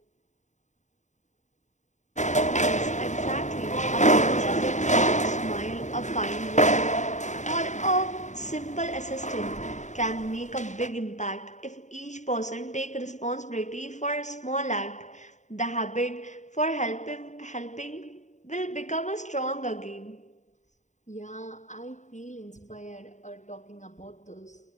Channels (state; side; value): late; right; 0.35 ms